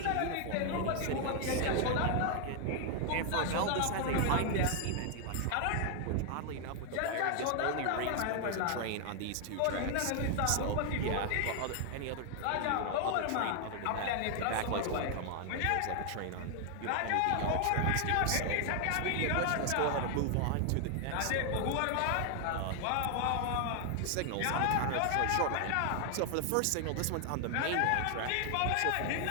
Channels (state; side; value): different; both; correlation 0.00